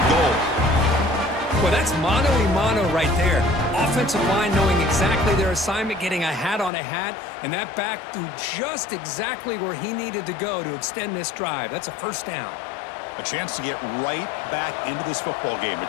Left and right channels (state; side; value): drops out; right; at 6.7 s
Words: goal. Well, that's mano-a-mano right there. Offensive line knowing exactly their assignment, getting a hat on a hat, and that back threw just exactly where he needed to go to extend this drive. That's a first down. A chance to get right back into this football game.